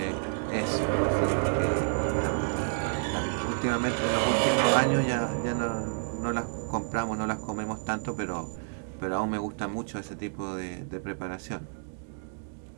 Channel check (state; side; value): silent; left; 58 dB below the other